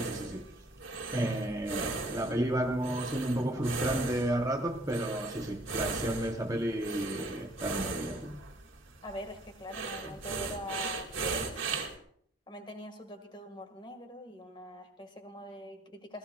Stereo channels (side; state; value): both; normal; correlation 0.60